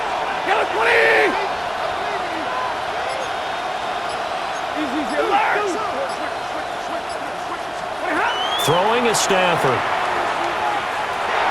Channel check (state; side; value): identical; both; correlation 1.00